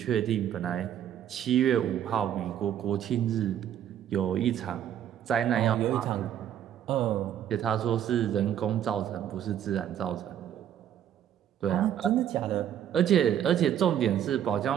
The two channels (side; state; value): left; quieter; 10.2 dB